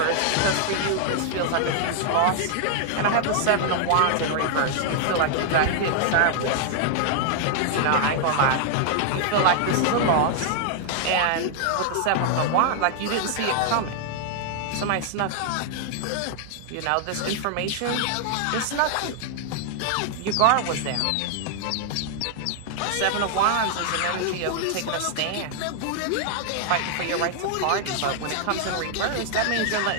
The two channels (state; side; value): different; both; correlation 0.00